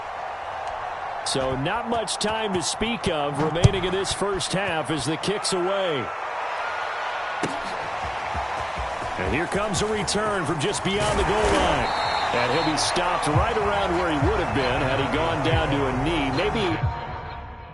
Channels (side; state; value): both; identical; correlation 1.00